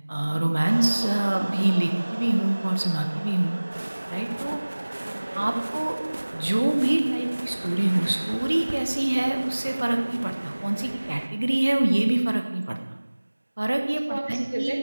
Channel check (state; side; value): inverted; both; correlation -1.00